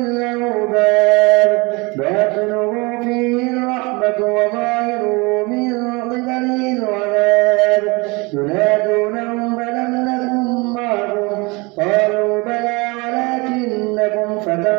باب باطنه فيه الرحمة وظاهره من قبله العذاب ينادونهم ألم نكن معكم قالوا بلى ولكنكم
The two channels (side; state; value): left; quieter; 26.4 dB